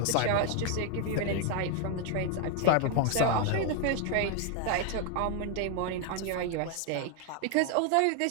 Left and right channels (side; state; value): both; different; correlation 0.01